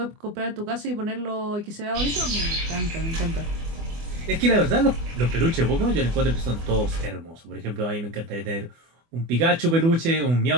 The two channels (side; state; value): left; late; 24 ms